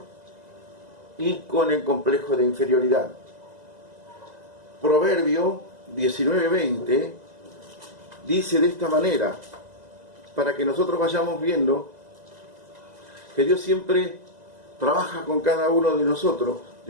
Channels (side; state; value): left; late; 2.0 ms